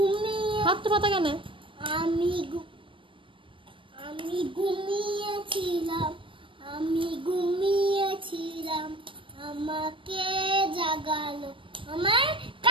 হাত তো পাতা কেন? আমি ঘুমিয়েছিলাম, আমি ঘুমিয়েছিলাম, আমাকে জাগালো আমার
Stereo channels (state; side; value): late; left; 0.25 ms